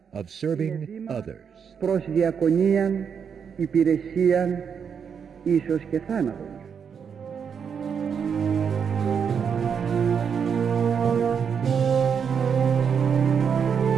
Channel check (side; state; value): left; quieter; 7.0 dB